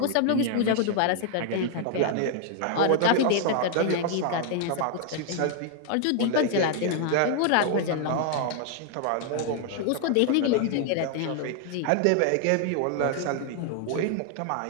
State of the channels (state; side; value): different; both; correlation 0.00